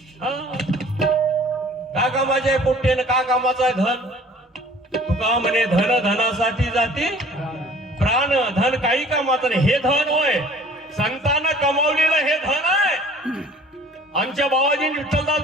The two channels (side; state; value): both; normal; correlation 0.50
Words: कामाचे पोट्टे न का कामाचा आहे धन? तुका म्हणे धन धनासाठी जाती प्राण, धन काही कामाचं नाही. हे धन होय, संतांना कमावलेलं हे धन आहे. आमच्या बाबाजीने, विठ्ठलदास